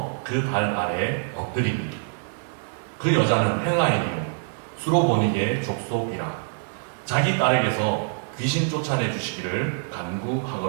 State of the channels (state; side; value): silent; left; 62 dB below the other